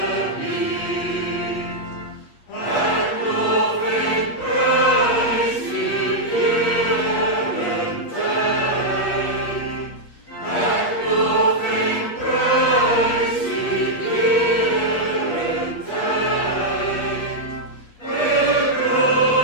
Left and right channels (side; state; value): right; late; 8.4 ms